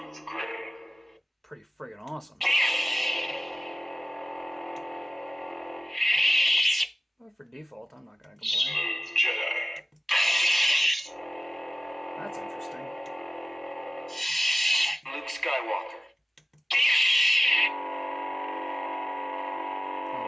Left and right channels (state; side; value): normal; both; correlation 0.97